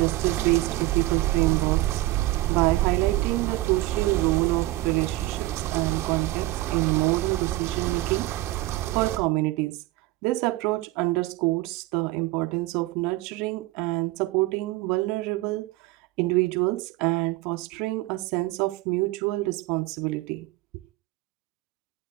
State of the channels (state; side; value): quieter; left; 18.5 dB